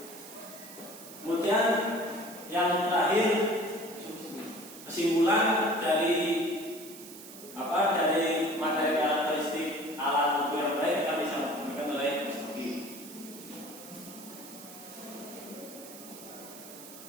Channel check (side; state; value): right; noise; hiss, 15 dB below the sound